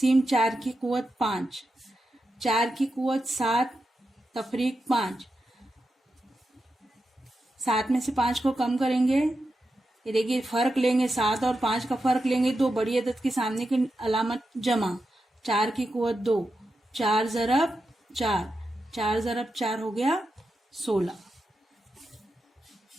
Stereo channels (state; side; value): normal; both; correlation 0.88